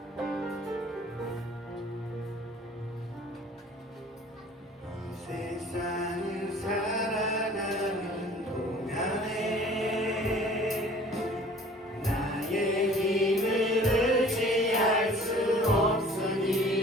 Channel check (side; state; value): both; normal; correlation 0.49